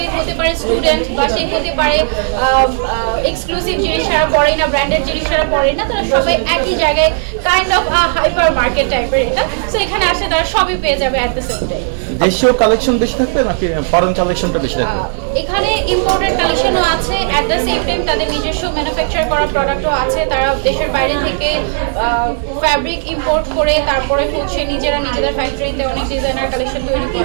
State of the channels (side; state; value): left; silent; digital silence